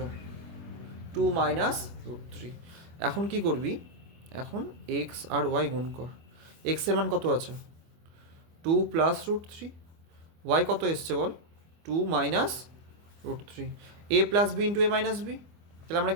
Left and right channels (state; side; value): late; left; 25 ms